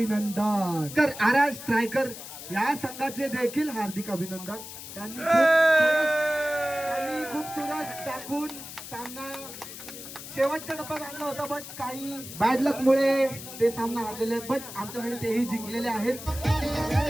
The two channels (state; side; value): noise; left; hiss, 12 dB below the sound